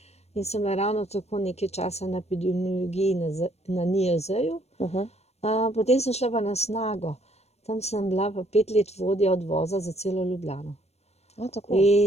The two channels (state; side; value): late; right; 0.31 ms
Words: In sem bila ravno tako nekaj časa na epidemiologiji na NIJZ-ju. Potem sem šla pa na Snago. Tam sem bila pa 5 let vodja odvoza za celo Ljubljano.